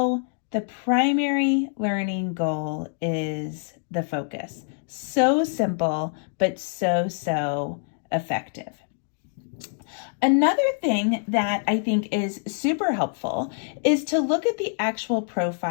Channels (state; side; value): silent; right; digital silence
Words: the primary learning goal is the focus. So simple, but so effective. Another thing that I think is super helpful is to look at the actual